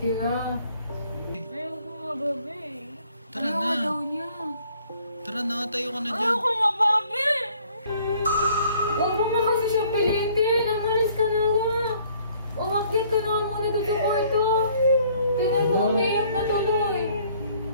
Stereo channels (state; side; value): inverted; both; correlation -0.60